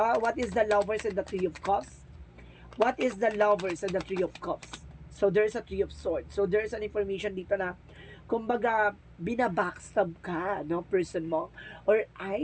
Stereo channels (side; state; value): both; identical; correlation 1.00